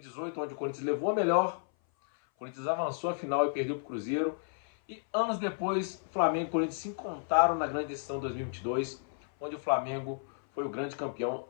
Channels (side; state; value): right; silent; 56 dB below the other